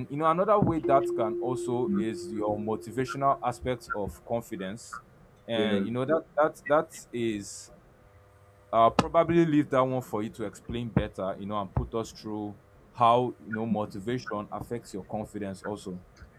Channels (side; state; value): both; identical; correlation 1.00